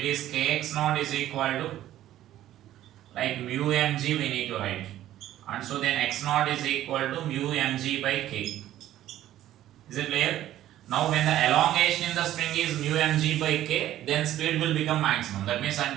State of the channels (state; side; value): quieter; left; 13.2 dB